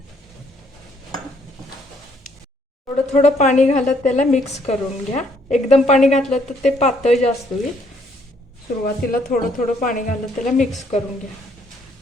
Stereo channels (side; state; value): both; normal; correlation 0.67